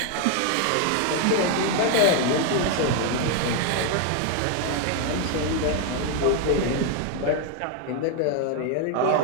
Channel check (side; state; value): both; different; correlation 0.01